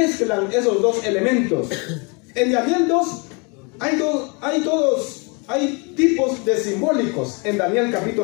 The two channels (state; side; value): quieter; right; 32.2 dB